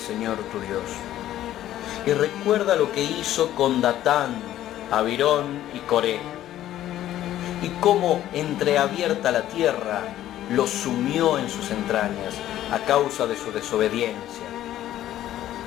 tu Dios, y recuerda lo que hizo con Datán, Abirón y Coré, y cómo entreabierta la tierra los sumió en sus entrañas a causa de su desobediencia.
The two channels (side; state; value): right; quieter; 12.9 dB